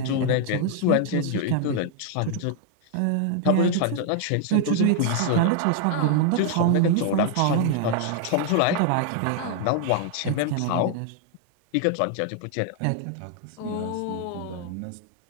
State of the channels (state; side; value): different; both; correlation 0.00